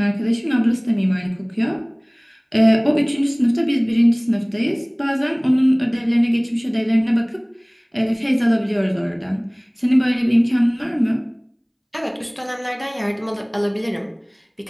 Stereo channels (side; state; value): both; identical; correlation 1.00